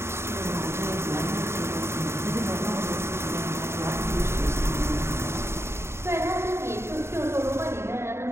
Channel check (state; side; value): late; left; 0.13 ms